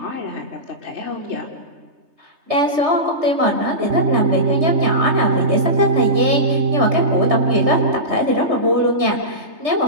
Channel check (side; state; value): left; late; 3.3 ms